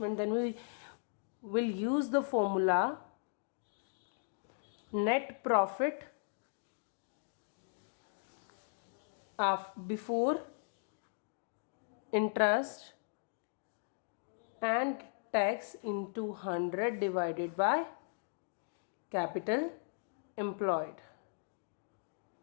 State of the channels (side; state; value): right; silent; digital silence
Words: then we will use the formula net profit before interest and tax into 100 divided by capital employed.